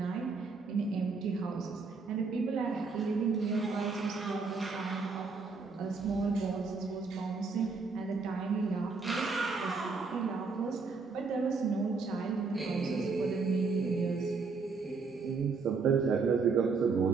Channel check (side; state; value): left; quieter; 4.5 dB